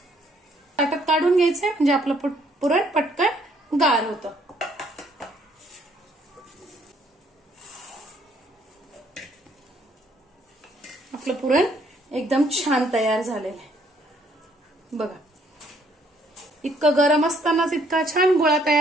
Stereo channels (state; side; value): normal; both; correlation 0.66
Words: ताटात काढून घ्यायचंय म्हणजे आपलं पुरण पटकन गार होतं. आपलं पुरण एकदम छान तयार झालेलं आहे. बघा, इतकं गरम असतानाच इतका छान गोळा